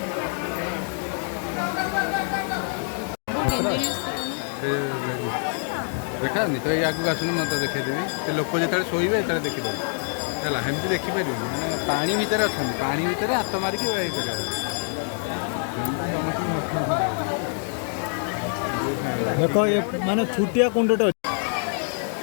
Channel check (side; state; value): right; silent; 56 dB below the other